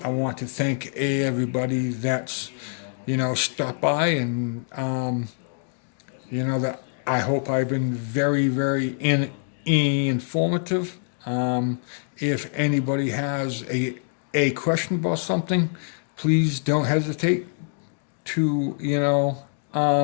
want to thank everybody that's, you know, stopped by, and you know, that I hope I've been very, very informative. If anybody has a question about something, please don't hesitate to, you know,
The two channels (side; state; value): right; silent; 62 dB below the other